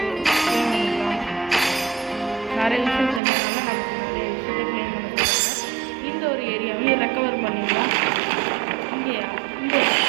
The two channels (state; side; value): drops out; left; at 3.2 s